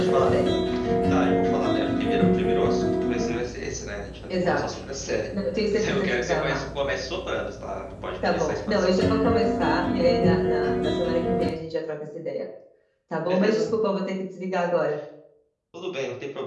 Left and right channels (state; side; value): identical; both; correlation 1.00